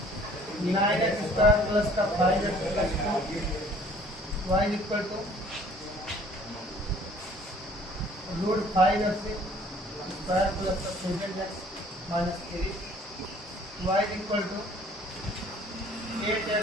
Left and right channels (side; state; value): both; normal; correlation 0.55